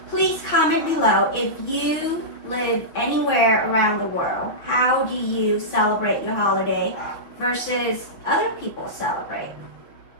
please comment below if you live anywhere around the world, how do you celebrate your holiday versus other people celebrate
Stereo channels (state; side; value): late; right; 6.0 ms